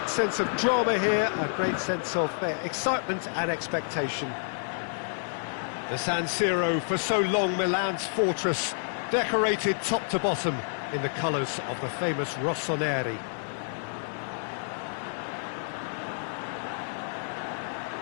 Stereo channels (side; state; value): right; silent; 56 dB below the other